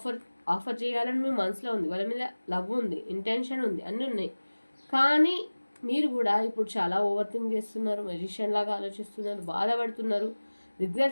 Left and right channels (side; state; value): both; inverted; correlation -1.00